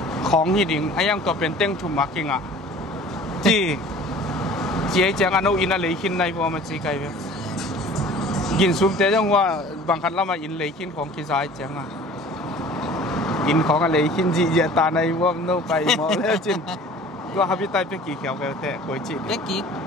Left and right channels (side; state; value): both; normal; correlation 0.46